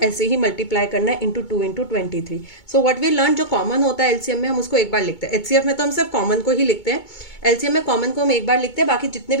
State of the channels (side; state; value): right; late; 2.2 ms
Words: ऐसे ही मल्टीप्लाई करना है into 2 into 23. So what we learn, जो कॉमन होता है LCM में हम उसको एक बार लिखते हैं, HCF में तो हम सिर्फ कॉमन को ही लिखते हैं, LCM में कॉमन को हम एक बार लिखते हैं, बाकी जितने